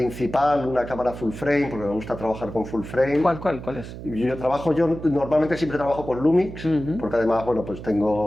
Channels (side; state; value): right; noise; hum, 11 dB below the sound